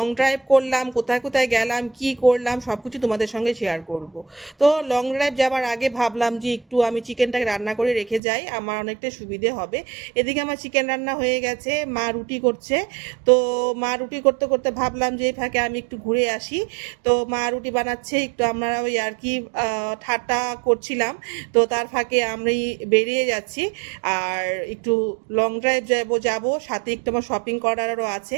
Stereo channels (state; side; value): drops out; left; at 8.2 s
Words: ড্রাইভ করলাম, কোথায় কোথায় গেলাম, কি করলাম সব কিছু তোমাদের সঙ্গে শেয়ার করব। তো লং ড্রাইভ যাওয়ার আগে ভাবলাম যে একটু আমি চিকেনটাকে রান্না করে রেখে যাই, আমার অনেকটা সুবিধে হবে। এদিকে আমার চিকেন রান্না হয়ে গেছে, মা রুটি করছে। তো মা রুটি করতে করতে ভাবলাম যে এই ফাঁকে আমি একটু ঘুরে আসি। তো মা রুটি বানাচ্ছে, একটু আমরা ওই আর কি ঠাট্টা করছিলাম। তো তার ফাঁকে আমি বেরিয়ে যাচ্ছি, আর একটু লং ড্রাইভ যাব, সাথে একটু আমার শপিং করারও আছে।